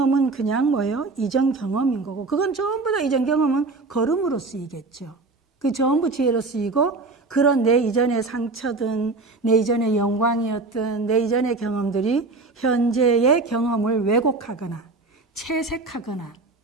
그냥 뭐예요? 이전 경험인 거고 그건 전부 다 이전 경험은 걸음으로 쓰이겠죠. 그 전부 지혜로 쓰이고 그런 내 이전의 상처든 내 이전의 영광이었든 내 이전의 경험들이 현재의 경험을 왜곡하거나 채색하거나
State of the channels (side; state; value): left; quieter; 3.5 dB